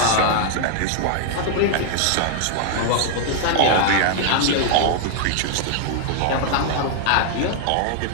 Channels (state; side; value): different; both; correlation -0.01